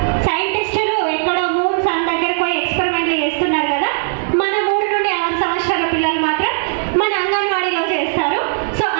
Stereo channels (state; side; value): silent; left; digital silence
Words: సైంటిస్టులు ఎక్కడో మూన్ సన్ దగ్గరకు పోయి ఎక్స్పెరిమెంట్లు చేస్తున్నారు కదా, మన 3 నుండి 6 సంవత్సరాల పిల్లలు మాత్రం మన అంగన్వాడీలో చేస్తారు. సో